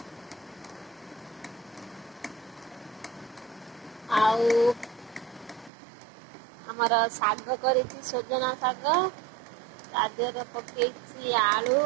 आउ हमारा साग करेछि सजना साग तादेर पकेछि आलू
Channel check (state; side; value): drops out; left; at 5.7 s